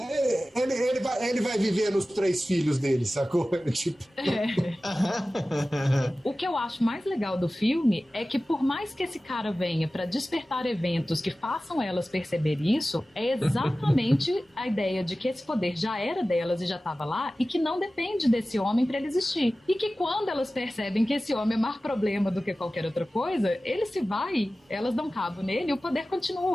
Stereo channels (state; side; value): normal; both; correlation 0.96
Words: Ele vai viver nos 3 filhos dele, sacou? Tipo... O que eu acho mais legal do filme é que por mais que esse cara venha pra despertar eventos que façam elas perceber isso, é exatamente a ideia de que esse poder já era delas e já estava lá e que não depende desse homem pra ele existir. E que quando elas percebem que esse homem é mais problema do que qualquer outra coisa, ele se vai, elas dão cabo nele e o poder